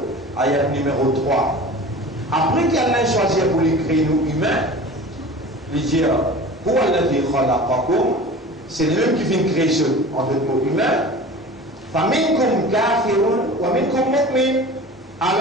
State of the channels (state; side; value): normal; both; correlation 0.38